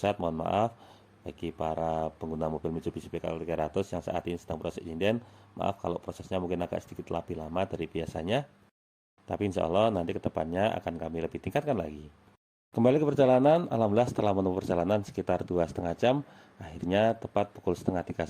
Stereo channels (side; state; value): both; identical; correlation 1.00